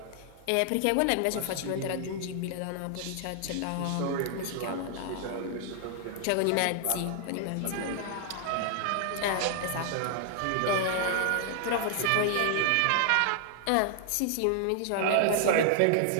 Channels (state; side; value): different; both; correlation 0.00